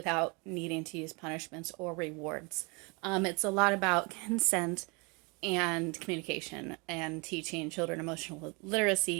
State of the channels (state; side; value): quieter; left; 29.7 dB